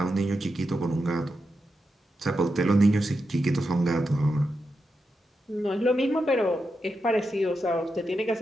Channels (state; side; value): normal; both; correlation 0.87